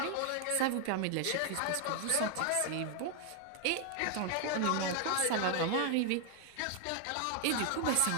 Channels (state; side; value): different; both; correlation 0.00